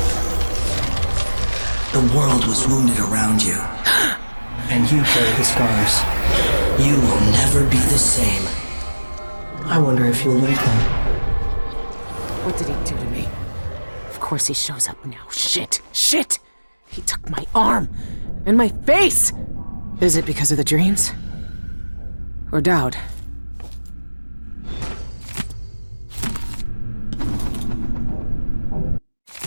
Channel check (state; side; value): inverted; both; correlation -1.00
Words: The world was wounded around you. And you carry the scars. You will never be the same. I wonder if you'll like them. What did he do to me? Of course he shows up now. Shit! Shit! He took my arm! And my face! Is it because of the dreams? Or Daud?